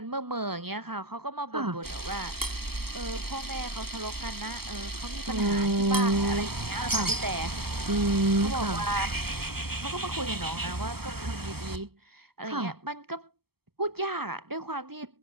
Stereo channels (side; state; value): left; late; 0.96 ms